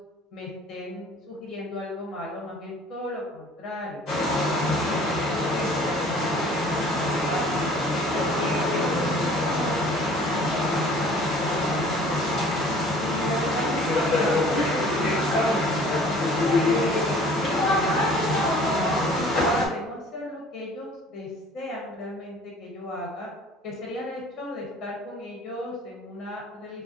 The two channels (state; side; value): normal; both; correlation 0.51